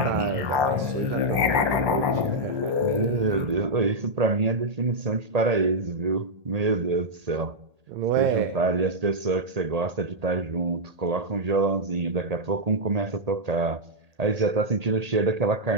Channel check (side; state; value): left; late; 1.2 ms